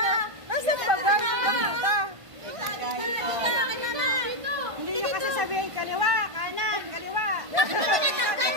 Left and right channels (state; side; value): late; left; 1.5 ms